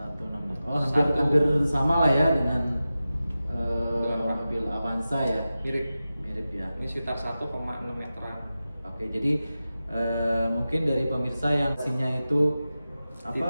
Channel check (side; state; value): both; inverted; correlation -0.94